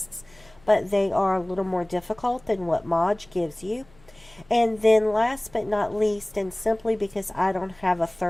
but they are a little more difficult than what Maj gives you. And then last but not least, and simply because I don't have a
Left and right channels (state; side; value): noise; left; hum, 28 dB below the sound